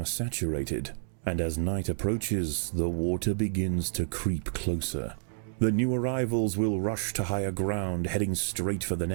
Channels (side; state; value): left; silent; digital silence